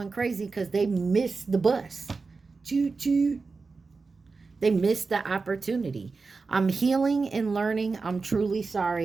crazy because they missed the bus. Choo choo. They missed the opportunity. I'm healing and learning. I'm truly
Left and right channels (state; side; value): quieter; left; 4.3 dB